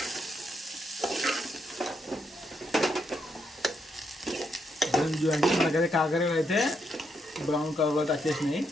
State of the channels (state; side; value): normal; both; correlation 0.78